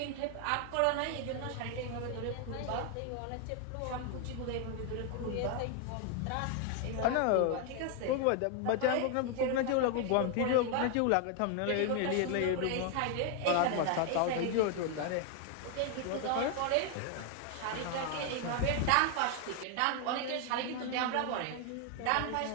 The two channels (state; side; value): different; both; correlation 0.00